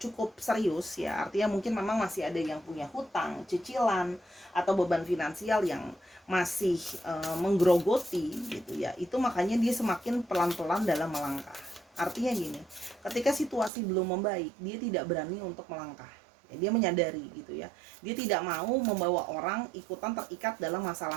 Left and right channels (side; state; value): left; drops out; at 13.7 s